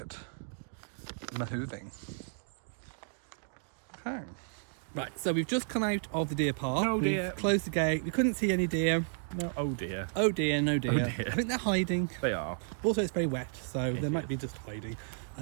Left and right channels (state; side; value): silent; left; digital silence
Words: moving. Okay. Right, so we've just come out of the deer park. Oh, dear. We've closed the gate. We couldn't see any deer. No, oh dear. Oh dear, no deer. Oh dear. I think they're hiding. They are. Also, it's very wet, so It they might is. be just hiding.